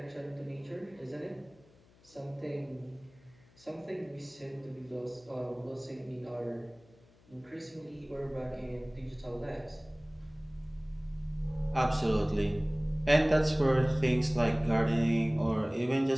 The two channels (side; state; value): left; noise; hum, 28 dB below the sound